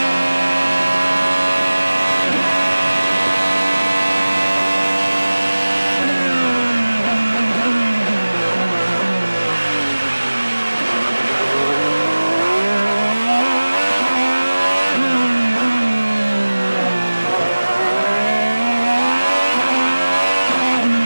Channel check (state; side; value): inverted; both; correlation -1.00